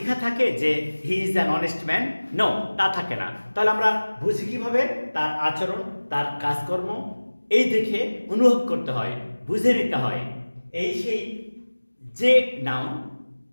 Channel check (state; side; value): inverted; both; correlation -1.00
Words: থাকে যে he is an honest man? No, তা থাকে না। তাহলে আমরা বুঝি কিভাবে? তার আচরণ, তার কাজকর্ম এই দেখে অনুভব করতে হয়, বুঝে নিতে হয়। এই সেই যে নাউন